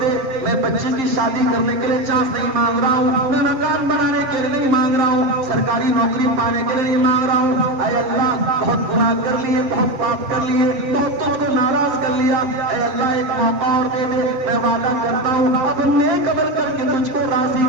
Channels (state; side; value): late; left; 7.6 ms